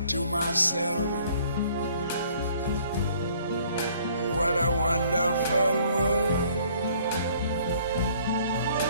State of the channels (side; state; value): both; inverted; correlation -0.59